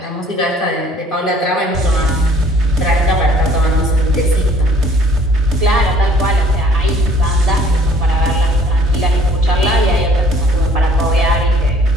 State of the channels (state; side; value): normal; both; correlation 0.57